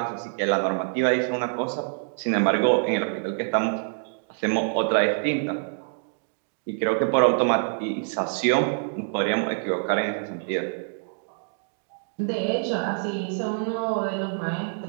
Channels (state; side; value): silent; left; digital silence